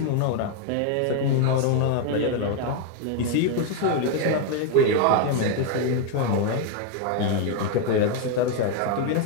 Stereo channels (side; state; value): both; different; correlation 0.01